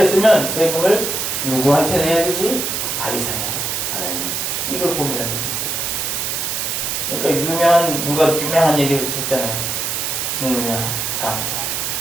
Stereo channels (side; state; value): right; noise; hiss, 1 dB below the sound